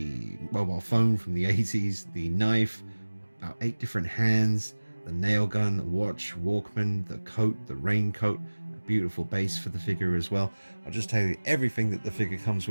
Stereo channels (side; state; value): both; inverted; correlation -1.00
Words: mobile phone from the 80s, the knife, about 8 different hands, the nail gun, watch, Walkman, the coat, the raincoat, a beautiful base for the figure as well. I'll just tell you everything that the figure comes